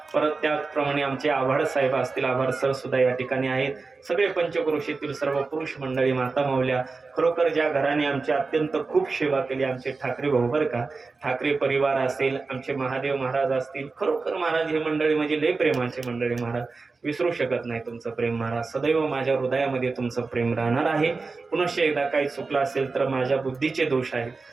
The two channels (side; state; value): left; quieter; 4.1 dB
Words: परत त्याप्रमाणे आमचे आभार साहेब असतील, आभार सर सुद्धा या ठिकाणी आहेत. सगळे पंचक्रोशीतील सर्व पुरुष मंडळी, माता माऊल्या, खरोखर ज्या घराने आमची अत्यंत खूप सेवा केली, आमचे ठाकरे भाऊ बरं का, ठाकरे परिवार असेल, आमचे महादेव महाराज असतील, खरोखर महाराज हे मंडळी म्हणजे लय प्रेमाचे मंडळी. महाराज विसरू शकत नाही तुमचं प्रेम महाराज, सदैव माझ्या हृदयामध्ये तुमचं प्रेम राहणार आहे. पुनश्च एकदा काही चुकलं असेल तर माझ्या बुद्धीचे दोष आहेत